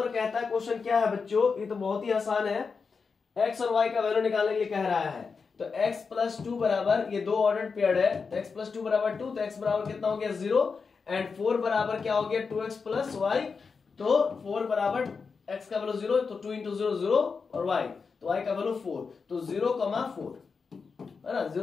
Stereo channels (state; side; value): quieter; right; 5.1 dB